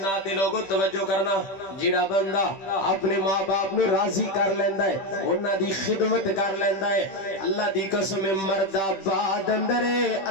دے لوگوں توجہ کرنا جڑا بندہ اپنے ماں باپ نو راضی کر لیندا ہے انہاں دی خدمت کر لیندا ہے اللہ دی قسم مرد آباد اندر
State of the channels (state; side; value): late; right; 15 ms